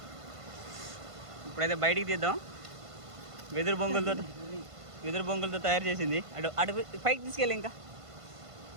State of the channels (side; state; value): left; late; 1.5 ms